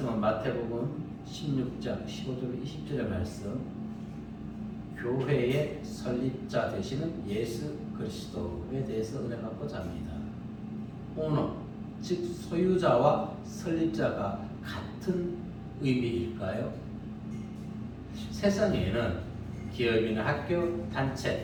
마태복음 16장 15절 20절의 말씀, 교회의 설립자 되시는 예수 그리스도에 대해서 은혜 받고자 합니다. 오너, 즉 소유자와 설립자가 같은 의미일까요? 세상에는 기업이나 학교,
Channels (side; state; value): both; identical; correlation 1.00